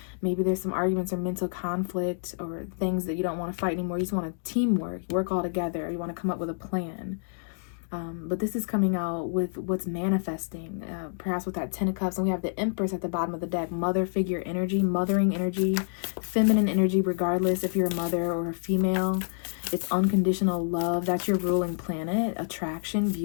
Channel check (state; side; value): silent; right; digital silence